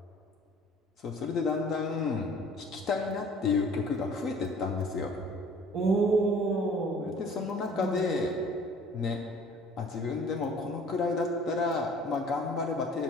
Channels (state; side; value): normal; both; correlation 0.51